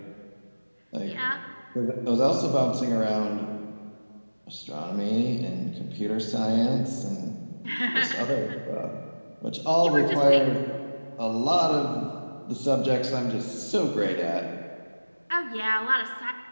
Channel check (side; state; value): both; inverted; correlation -1.00